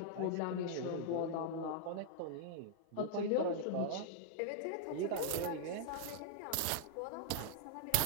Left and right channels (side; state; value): both; different; correlation -0.01